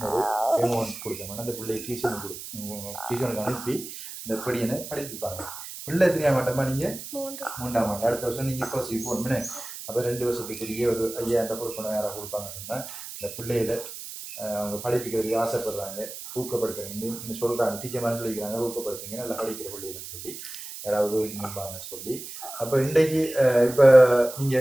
ஒரு அமௌண்ட் கொடுக்கணும். அந்த பிள்ளையை டியூஷனுக்கு அனுப்பி இந்த படியனை படிப்பிப்பாங்க. பிள்ளை எத்தனையா மாட்டோமா? நீங்கள் 3ஆம் ஆண்டு. அடுத்த வருஷம் நீங்கள் +C போகணும்னு. அப்போ 2 வருஷத்துக்குரிய ஒரு 5,000 கொடுக்கணும். யாராவது கொடுப்பாங்கன்னு சொன்னால் இந்த பிள்ளைகளை அவங்க படிப்பிக்கிறதுக்கு ஆசைப்படுறாங்க, ஊக்கப்படுத்துறீங்கன்னு சொல்கிறாங்க. டீச்சர் மாதிரி சொல்லிக்கிறாங்க, ஊக்கப்படுத்துங்க நல்லா படிக்கிற பிள்ளைகள்னு சொல்லி யாராவது நிற்பாங்கன்னு சொல்லி. அப்போ இன்றைக்கு இப்போ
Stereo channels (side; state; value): right; noise; hiss, 11 dB below the sound